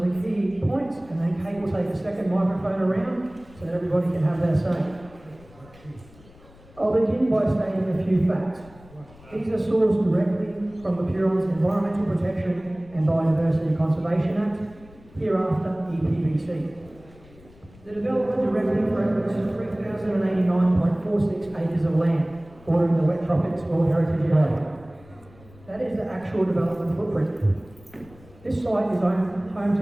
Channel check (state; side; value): noise; left; rumble, 24 dB below the sound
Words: key points and then Kate will take a second microphone around so that everybody can have their say. I'll begin by stating a few facts. These are sourced directly from the Huron's Environmental Protection and Biodiversity Conservation Act, hereafter EPBC. The development directly threatens 3,089.46 acres of land bordering the Wet Tropics World Heritage Area. That is the actual development footprint. This site is home